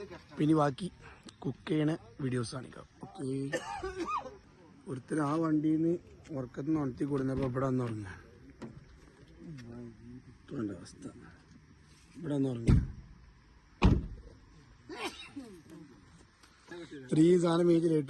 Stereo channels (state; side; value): identical; both; correlation 1.00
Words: പിന്നെ ബാക്കി കുക്ക് ചെയ്യണ വീഡിയോസ് കാണിക്കാം. ഓക്കെ. ഒരുത്തർ ആ വണ്ടിയിൽ നിന്ന് ഉറക്കത്തിൽ നിന്ന് ഉണർത്തി കൊടുന്നപ്പോ ഇവിടെ വന്ന് ഉറങ്ങ. അവസ്ഥ ഇവിടെ വന്ന് ഉറങ്ങ. ഇത്രയും സാധനം മേടിച്ച്